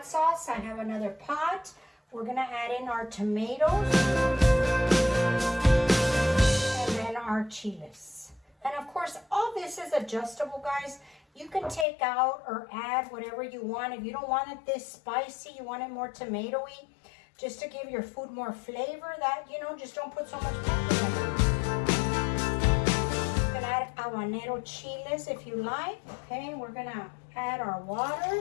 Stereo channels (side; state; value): right; drops out; at 11.9 s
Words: sauce, I have another pot. We're going to add in our tomatoes and then our chiles. And of course, all this is adjustable, guys. You can take out or add whatever you want. If you don't want it this spicy, you want it more tomatoey, just to give your food more flavor, that, you know, just don't put so much pepper in it. You can add habanero chiles if you like. Okay, we're going to add our